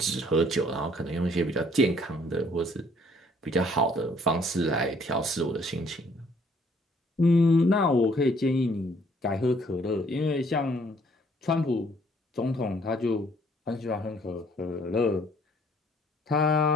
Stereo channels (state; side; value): normal; both; correlation 0.62